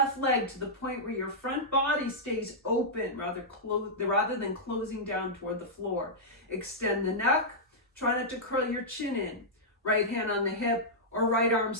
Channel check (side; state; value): both; normal; correlation -0.09